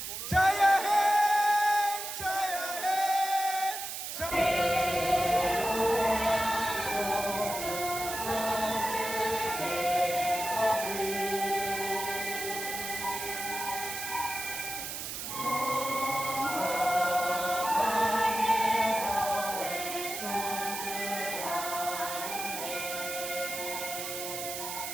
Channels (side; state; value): right; noise; hiss, 6 dB below the sound